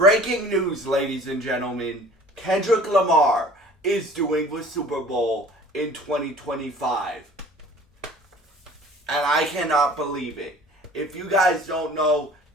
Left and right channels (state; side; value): normal; both; correlation 0.48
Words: news, ladies and gentlemen. Kendrick Lamar is doing the Super Bowl in 2025. And I cannot believe it. If you guys don't know,